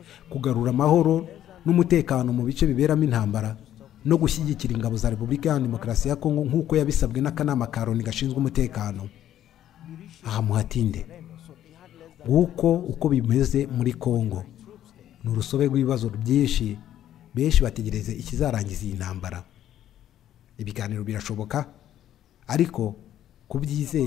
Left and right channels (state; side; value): quieter; right; 11.6 dB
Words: kugarura amahoro n'umutekano mu bice biberamo intambara no gushyigikira ingabo za Repubulika ya Demokarasi ya Kongo nk'uko yabisabwe n'akanama ka Loni gashinzwe umutekano. Aha muhatinde uko bimeze muri Kongo ni urusobe rw'ibibazo byinshi, benshi bategereze ikizarangiza iyi ntambara. Ibiganiro birashoboka ariko